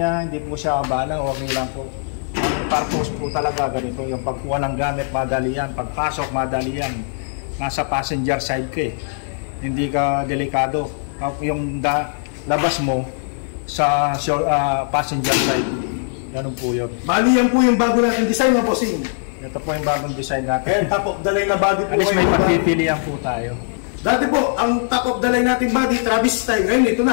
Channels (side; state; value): right; silent; 57 dB below the other